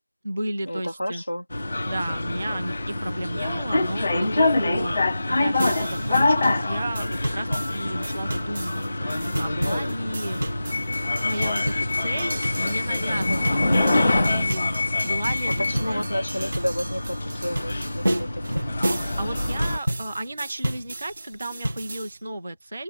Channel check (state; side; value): inverted; both; correlation -0.94